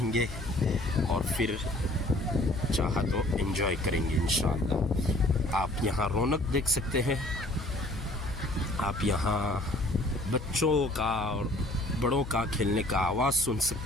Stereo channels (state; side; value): noise; left; hum, 10 dB below the sound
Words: और फिर चाहा तो एंजॉय करेंगे इंशाअल्लाह। आप यहाँ रौनक देख सकते हैं, आप यहाँ बच्चों का और बड़ों का खेलने का आवाज़ सुन